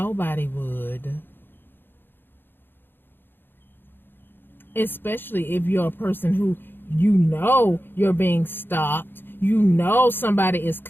would. Especially if you're a person who you're being stalked. Somebody is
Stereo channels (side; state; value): right; late; 0.099 ms